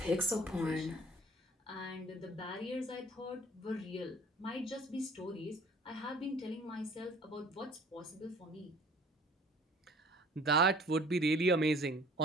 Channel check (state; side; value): normal; both; correlation 0.51